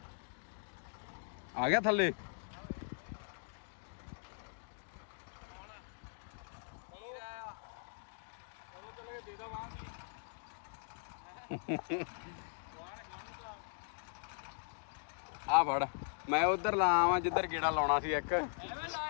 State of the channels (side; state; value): right; silent; digital silence